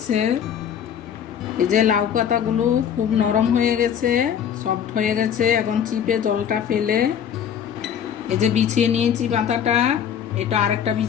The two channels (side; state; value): right; quieter; 8.6 dB